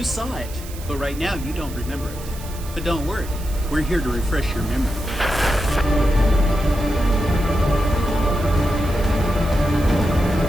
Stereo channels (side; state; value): right; noise; hiss, 16 dB below the sound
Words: saw it, but right now you don't remember it. But don't worry, we're here to refresh your memory.